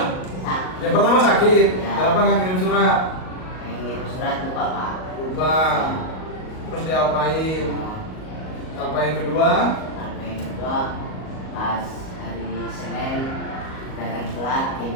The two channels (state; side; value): late; right; 38 ms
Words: Sakit. Yang pertama sakit. Ya. Kenapa nggak kirim surat? Yang ngirim surat lupa, Pak. Lupa. Terus diapain? Apa yang kedua? Sampai yang kedua pas hari Senin datang telat,